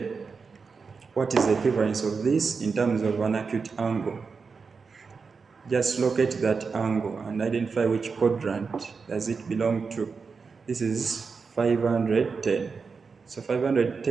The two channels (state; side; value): quieter; left; 5.0 dB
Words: what is the equivalence of this in terms of an acute angle? Just locate that angle and identify which quadrant does it belong to. This is 510. So